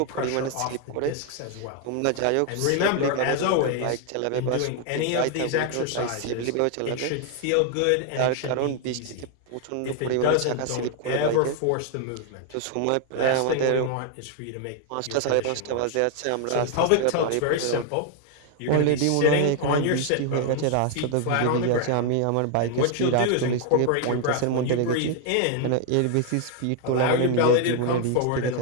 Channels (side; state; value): both; different; correlation 0.00